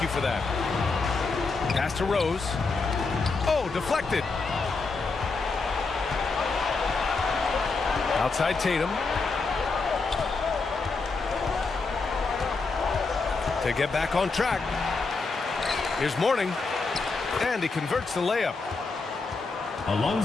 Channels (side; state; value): right; quieter; 4.1 dB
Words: you for that. Pass to Rose. Oh, deflected. Outside Tatum. To get back on track. Here's Mourning. And he converts the layup.